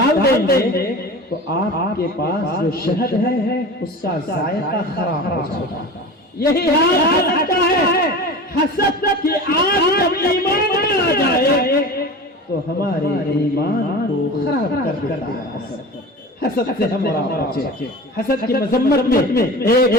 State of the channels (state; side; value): normal; both; correlation 0.33